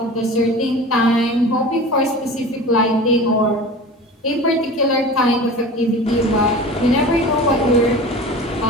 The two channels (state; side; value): normal; both; correlation 0.36